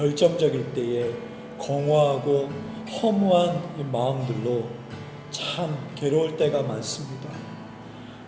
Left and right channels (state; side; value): identical; both; correlation 1.00